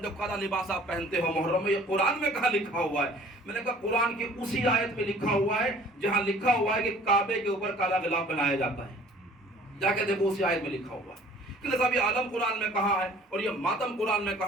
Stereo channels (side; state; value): both; normal; correlation 0.51